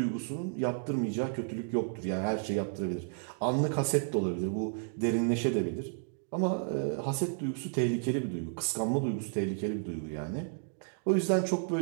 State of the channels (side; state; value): left; silent; digital silence